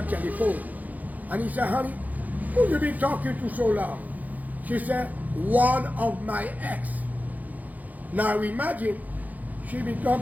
telephone and he said, honey, who you been talking to so long? She said, one of my ex. Now imagine she been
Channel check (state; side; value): late; left; 0.080 ms